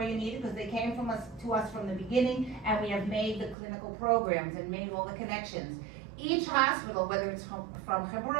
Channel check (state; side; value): drops out; left; at 3.6 s